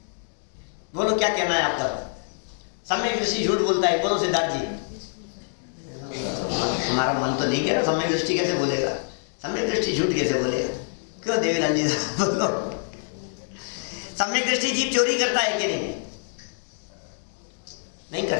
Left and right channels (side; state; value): right; silent; digital silence